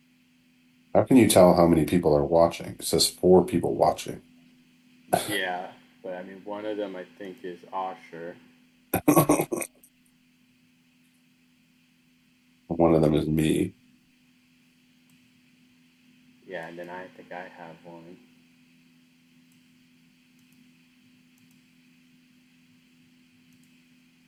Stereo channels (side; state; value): both; identical; correlation 1.00